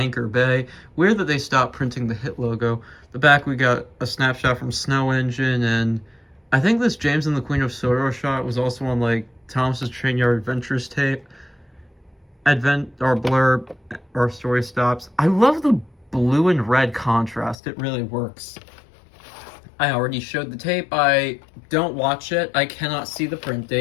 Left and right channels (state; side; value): drops out; right; at 17.6 s